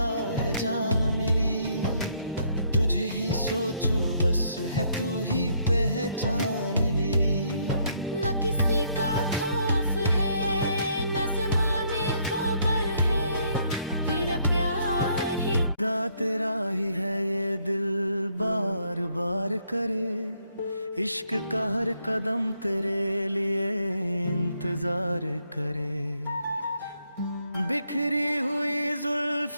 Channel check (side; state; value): both; inverted; correlation -0.70